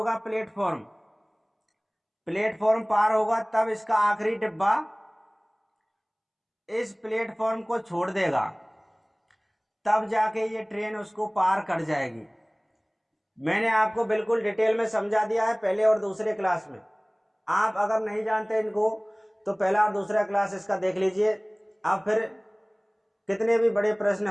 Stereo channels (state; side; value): identical; both; correlation 1.00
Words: प्लेटफॉर्म? प्लेटफॉर्म पार होगा तब इसका आखिरी डिब्बा इस प्लेटफॉर्म को छोड़ देगा, तब जाके ये ट्रेन उसको पार कर जाएगी। मैंने आपको बिल्कुल डिटेल में समझा दिया है पहले और दूसरे क्लास में। आप अगर नहीं जानते इनको तो पहला और दूसरा क्लास इसका देख लीजिए, आप फिर कितने भी बड़े प्रश्न